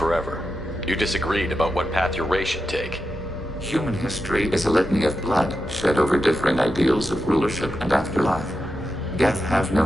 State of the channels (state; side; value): normal; both; correlation 0.88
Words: You disagreed about what path your race should take. Human history is a litany of blood shed over differing ideals of rulership and afterlife. Geth have